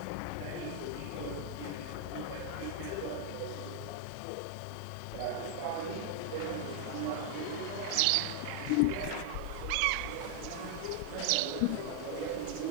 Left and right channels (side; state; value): both; different; correlation 0.00